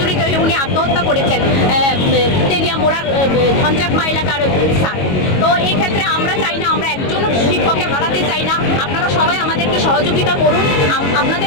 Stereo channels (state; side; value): late; right; 22 ms